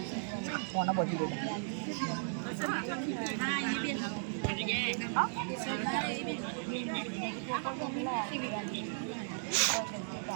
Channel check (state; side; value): silent; left; digital silence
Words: કોના બોલી દે